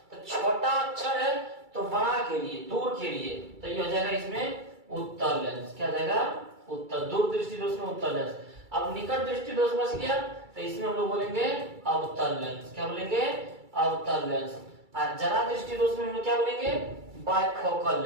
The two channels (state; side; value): late; left; 2.3 ms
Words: तो छोटा अक्षर है तो बड़ा के लिए, दूर के लिए, तो ये हो जाएगा इसमें उत्तल लेंस, क्या जाएगा, उत्तल, दूर दृष्टि दोष में उत्तल लेंस। अब निकट दृष्टि दोष बच गया, तो इसमें हम लोग बोलेंगे अवतल लेंस, क्या बोलेंगे, अवतल लेंस। और जरा दृष्टि दोष में हम लोग क्या बोलेंगे, bifocal